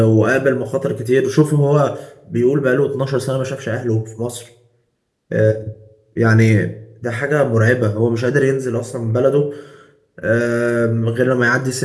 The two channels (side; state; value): both; identical; correlation 1.00